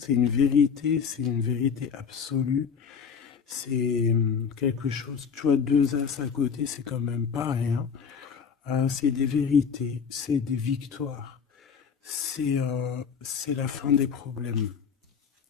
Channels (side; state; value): right; quieter; 6.5 dB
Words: c'est une vérité absolue. C'est quelque chose, tu vois, 2 as à côté, c'est quand même pas rien. C'est des vérités, c'est des victoires. C'est la fin des problèmes.